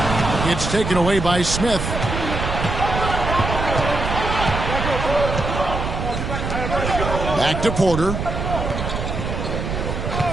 It's taken away by Smith. Back to Porter.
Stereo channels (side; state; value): right; noise; rumble, 3 dB below the sound